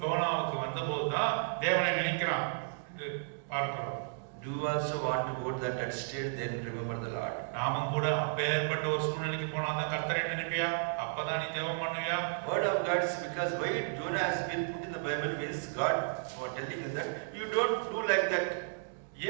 யோனாவுக்கு வந்தபோது தான் தேவனை நினைக்கிறான் என்று பார்க்கிறோம். Do you also want to go to that state, then remember the Lord? நாமும் கூட அப்பேற்பட்ட ஒரு சூழ்நிலைக்கு போனா தான் கர்த்தரை நினைப்பியா, அப்பதான் நீ ஜெபம் பண்ணுவியா? Word of God is because why Jonah has been put in the Bible means God was telling us that you don't do like that.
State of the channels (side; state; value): left; silent; digital silence